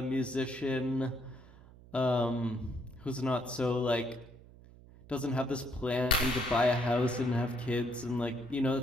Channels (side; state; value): right; noise; hum, 21 dB below the sound